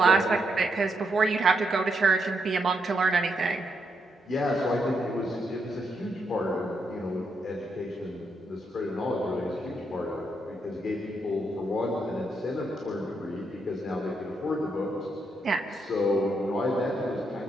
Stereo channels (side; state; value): both; normal; correlation 0.78